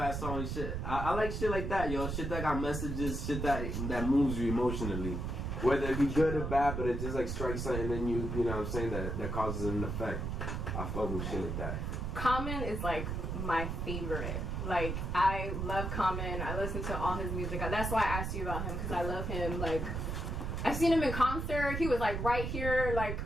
song and shit. I like shit like that, yo. Shit that got messages, shit that moves you emotionally. Whether it be good or bad, but it just like strikes something and you know what I'm saying, that causes an effect. I fuck with shit like that. Common is like my favorite. Like, I love Common. I listen to all his music. That's why I asked you about him, because I love him. Like, I've seen him in concert. He was like right here. Like,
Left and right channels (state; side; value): noise; right; rumble, 3 dB below the sound